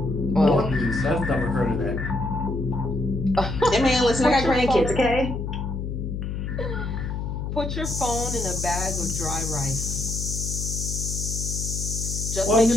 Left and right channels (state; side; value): noise; left; hum, 4 dB below the sound